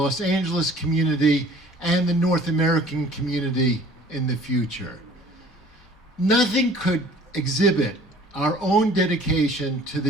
Angeles community and the North American community in the future. Nothing could exhibit our own dedication to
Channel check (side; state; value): both; normal; correlation 0.51